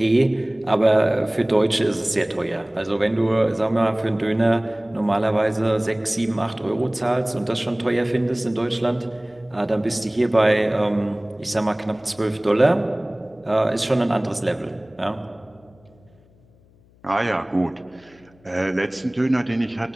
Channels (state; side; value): noise; left; hum, 30 dB below the sound